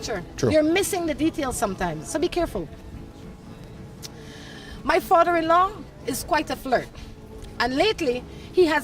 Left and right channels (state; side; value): identical; both; correlation 1.00